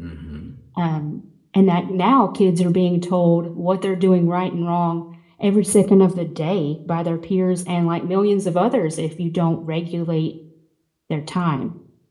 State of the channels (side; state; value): both; identical; correlation 1.00